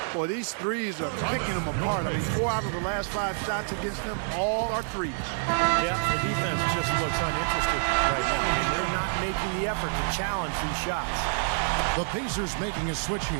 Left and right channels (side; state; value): left; silent; digital silence